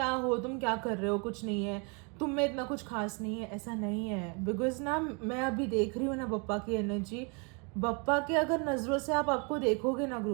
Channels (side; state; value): left; quieter; 33.7 dB